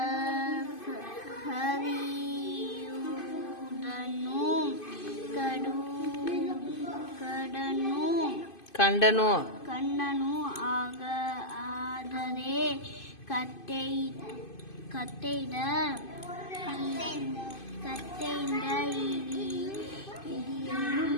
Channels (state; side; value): late; right; 2.5 ms